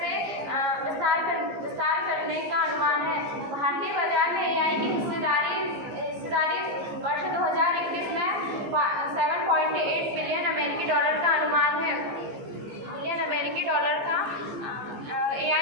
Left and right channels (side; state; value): left; late; 15 ms